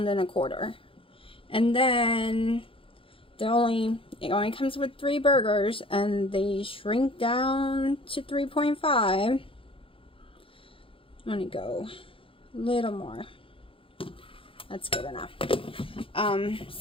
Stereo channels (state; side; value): late; right; 0.26 ms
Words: and then it only comes with 3 burgers, and they shrink down to 3.5. I'm gonna go a little more. That's good enough.